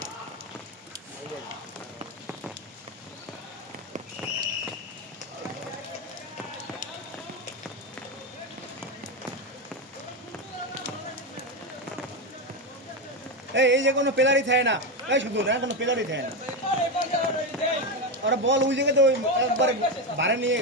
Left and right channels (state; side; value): normal; both; correlation 0.12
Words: এই যে কোনো পেলারি থাকে না এই শুধু না কোনো পেলারি থাকে না ওরা বল ওই জায়গাতে ওই একবারে ভাড়া নিয়ে